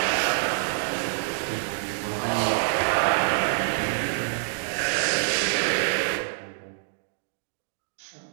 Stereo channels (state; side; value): silent; left; digital silence